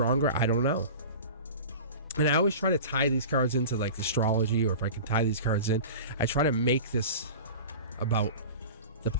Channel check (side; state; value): both; inverted; correlation -0.35